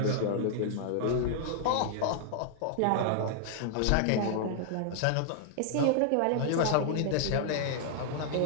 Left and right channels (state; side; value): different; both; correlation -0.01